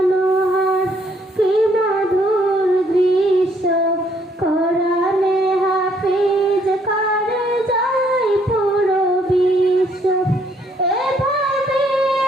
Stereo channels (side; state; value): both; normal; correlation 0.68